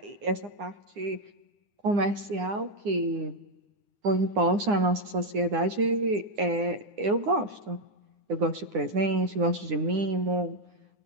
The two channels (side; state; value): left; late; 9.8 ms